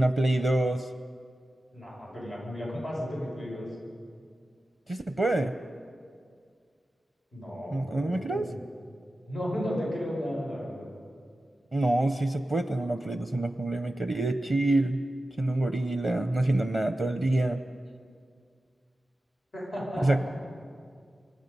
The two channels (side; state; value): both; normal; correlation 0.94